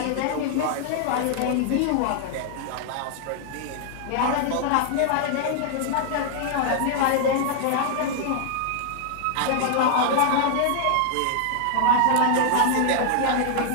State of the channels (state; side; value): different; both; correlation 0.00